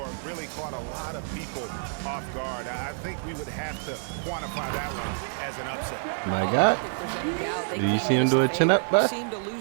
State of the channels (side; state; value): left; silent; 60 dB below the other